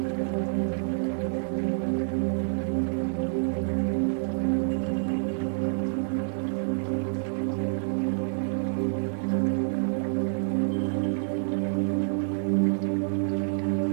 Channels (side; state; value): left; silent; digital silence